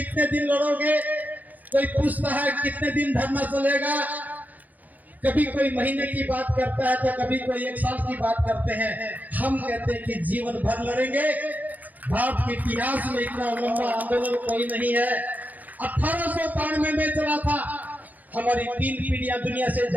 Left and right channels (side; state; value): left; late; 0.081 ms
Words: दिन लड़ोगे, कोई पूछता है कितने दिन धरना चलेगा, कभी कोई महीने की बात करता है तो कभी कोई 1 साल की बात करते हैं। हम कहते हैं कि जीवन भर लड़ेंगे। भारत के इतिहास में इतना लंबा आंदोलन कोई नहीं है। 1892 में चला था, हमारी 3 पीढ़ियां दुनिया से